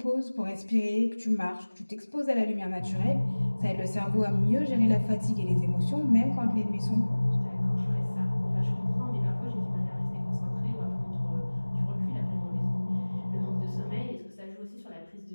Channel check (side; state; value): both; inverted; correlation -1.00